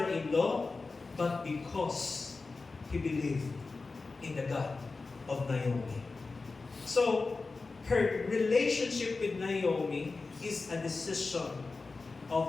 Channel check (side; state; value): right; quieter; 3.9 dB